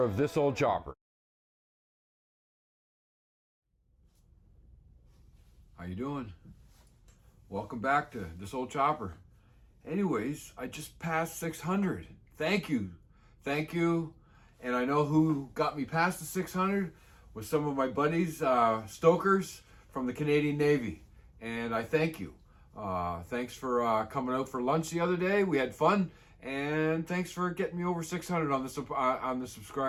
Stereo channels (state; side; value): identical; both; correlation 1.00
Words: of This Old Chopper. How you doing? Welcome back to This Old Chopper. Anyways, I just passed 600. Thank you. Thank you. And I know who got me past the 600 was some of my buddies, stokers from the Canadian Navy. And I thank you. Thanks for coming out for lunch the other day. We had fun. And thanks for getting me over 600 on the